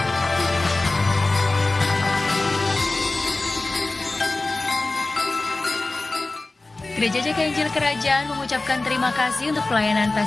Gereja JKI Injil Kerajaan mengucapkan terima kasih untuk pelayanan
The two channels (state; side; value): quieter; right; 3.1 dB